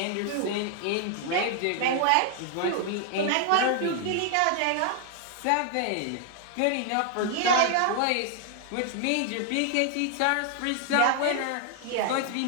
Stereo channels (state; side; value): different; both; correlation 0.00